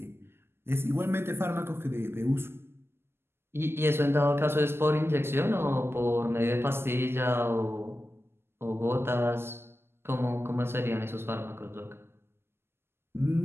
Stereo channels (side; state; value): left; late; 0.12 ms